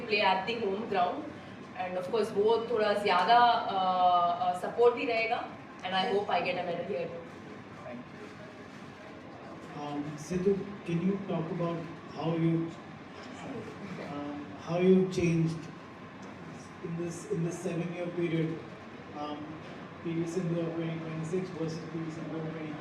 play at the home ground and of course वो थोड़ा ज़्यादा सपोर्ट भी रहेगा and I hope I get a medal here too. Sindhu, can you talk about how you changed in this 7-year period? PV Sindhu of 2026 versus PV Sindhu of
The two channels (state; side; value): identical; both; correlation 1.00